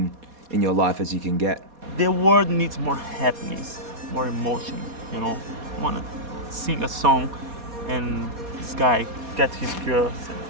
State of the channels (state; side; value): late; left; 4.2 ms